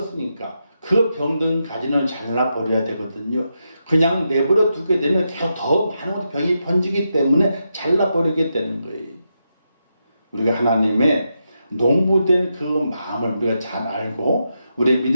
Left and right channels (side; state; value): both; inverted; correlation -0.85